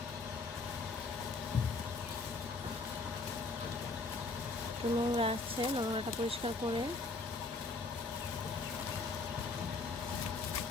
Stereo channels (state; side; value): quieter; right; 3.7 dB